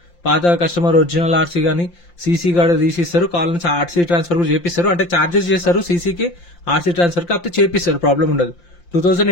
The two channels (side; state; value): right; late; 5.8 ms